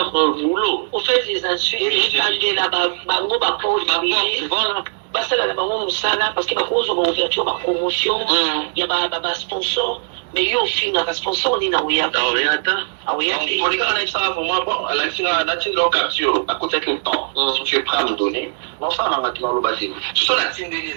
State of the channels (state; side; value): silent; left; digital silence